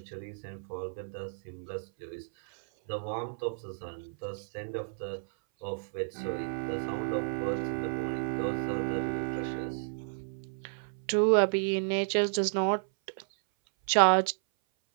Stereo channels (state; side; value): silent; left; 57 dB below the other